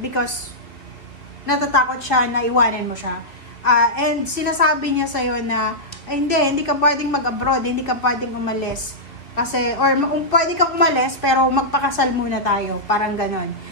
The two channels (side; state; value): right; late; 2.7 ms